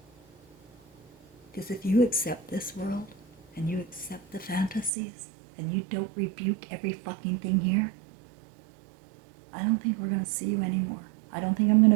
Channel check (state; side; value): drops out; left; at 4.9 s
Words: Because if you accept this world and you accept the fantasies and you don't rebuke every fucking thing here, I don't think we're going to see you anymore. I don't think I'm going